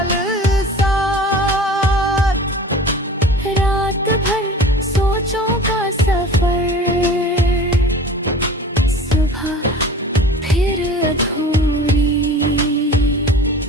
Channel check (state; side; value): normal; both; correlation 0.41